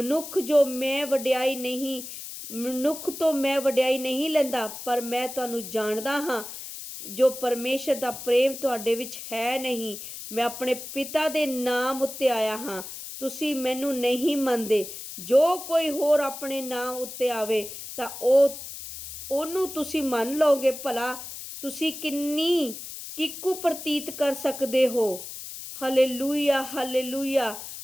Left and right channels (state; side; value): noise; left; hiss, 10 dB below the sound